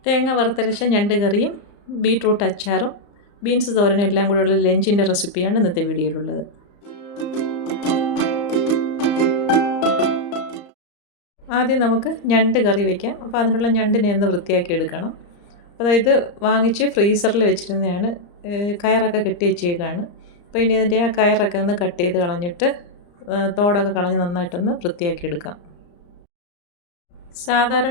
തേങ്ങ വറുത്തരച്ച ഞണ്ട് കറിയും ബീട്രൂട്ട് അച്ചാറും ബീൻസ് തോരനും എല്ലാം കൂടെയുള്ള ലഞ്ചിൻ്റെ റെസിപ്പിയാണ് ഇന്നത്തെ വീഡിയോയിലുള്ളത്. ആദ്യം നമുക്ക് ഞണ്ട് കറി വയ്ക്കാം. അപ്പോൾ അതിനുള്ള ഞണ്ടിനെ ഒന്ന് വൃത്തിയാക്കി എടുക്കണം. അതായത് വാങ്ങിച്ച് ഫ്രീസറിൽ വെച്ചിരുന്നതാണ്. കയറൊക്കെ കെട്ടി വെച്ചേക്കാണ്. അപ്പോൾ ഇനി അതിൻ്റെ ആ കയറൊക്കെ ഒന്ന് കട്ട് ചെയ്ത് കളഞ്ഞിട്ട് തോടൊക്കെ കളഞ്ഞ് നന്നായിട്ടൊന്ന് വൃത്തിയാക്കി എടുക്കാം.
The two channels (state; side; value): late; right; 34 ms